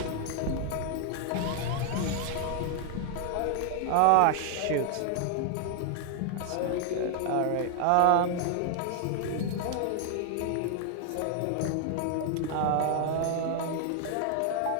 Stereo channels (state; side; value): different; both; correlation 0.00